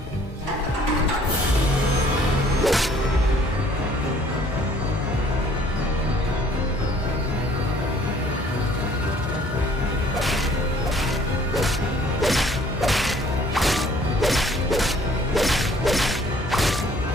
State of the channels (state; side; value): normal; both; correlation 0.58